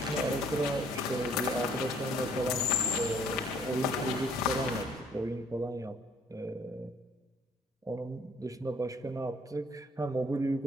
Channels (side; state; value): both; normal; correlation 0.60